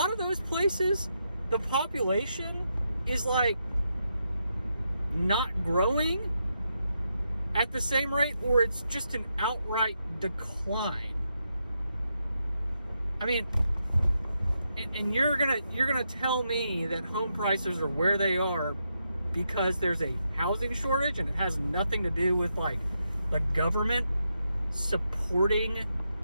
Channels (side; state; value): both; inverted; correlation -0.83